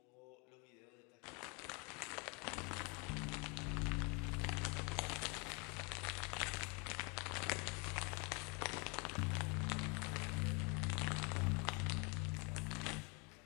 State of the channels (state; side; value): quieter; right; 31.7 dB